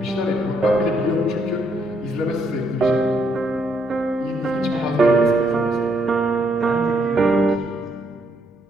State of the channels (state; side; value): normal; both; correlation 0.73